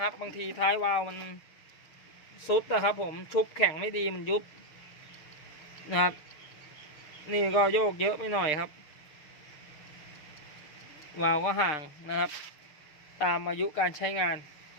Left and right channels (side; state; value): right; late; 6.6 ms